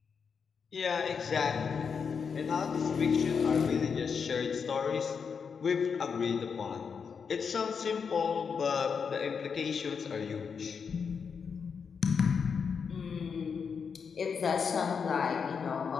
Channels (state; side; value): quieter; right; 6.1 dB